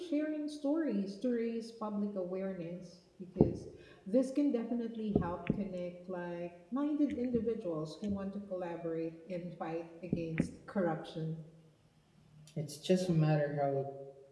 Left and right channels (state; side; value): identical; both; correlation 1.00